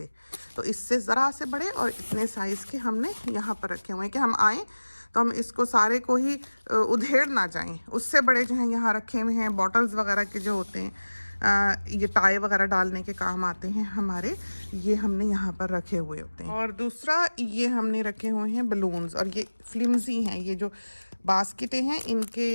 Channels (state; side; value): inverted; both; correlation -1.00